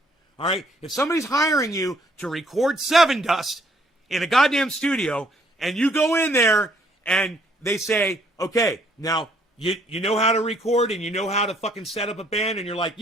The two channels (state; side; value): normal; both; correlation 0.65